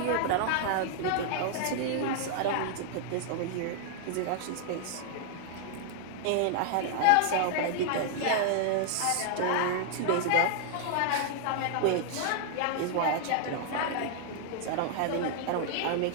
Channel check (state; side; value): different; both; correlation -0.01